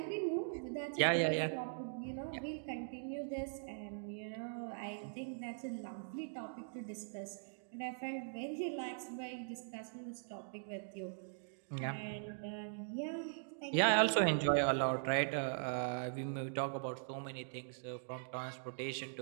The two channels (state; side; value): silent; left; digital silence